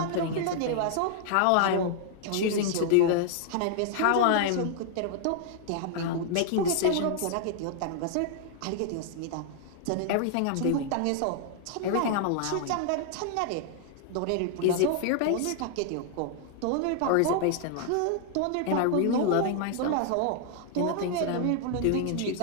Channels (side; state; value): both; different; correlation 0.00